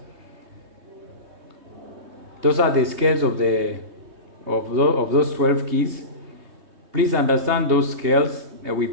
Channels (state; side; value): late; left; 3.2 ms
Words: Those are the scales of those 12 keys. Please understand those scales with